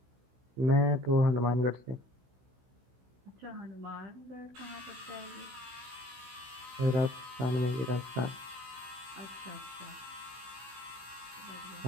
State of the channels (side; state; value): left; late; 16 ms